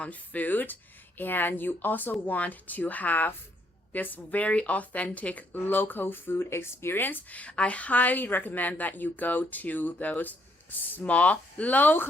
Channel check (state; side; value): normal; both; correlation 0.71